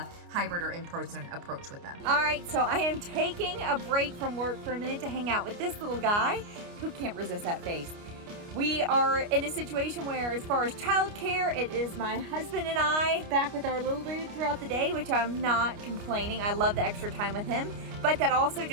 hybrid or in-person approach with them. All right, so I am taking a break from work for a minute to hang out with this little guy who can't resist that face. We are in a situation where, as far as childcare, it is my husband and I back with our little dude throughout the day, which I'm not complaining. I love the extra time with him. But that also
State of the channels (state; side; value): late; left; 29 ms